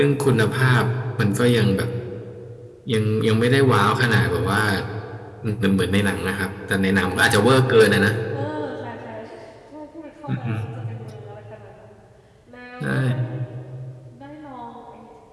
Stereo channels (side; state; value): both; identical; correlation 1.00